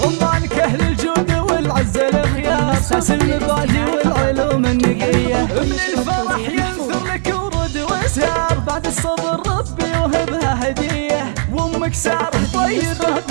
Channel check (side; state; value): left; silent; 59 dB below the other